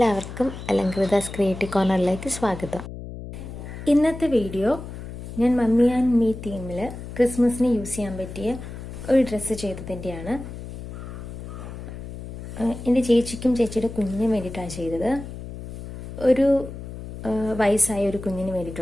അലങ്കൃതാസ് ക്രിയേറ്റീവ് കോർണറിലേക്ക് സ്വാഗതം. ഇന്നത്തെ വീഡിയോ ഞാൻ മമ്മി ആൻഡ് മീ തീമിൽ ക്രിസ്മസിന് യൂസ് ചെയ്യാൻ പറ്റിയ ഒരു ഡ്രസ്സ് ചെയ്തതിൻ്റെയാണ്. എൻ്റെ ചേച്ചിക്കും ചേച്ചിയുടെ കുഞ്ഞിനും വേണ്ടിയിട്ടാണ് ചെയ്തത്. ഒരു വയസ്സായ ഒരു കുഞ്ഞിന്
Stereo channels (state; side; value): noise; left; hum, 10 dB below the sound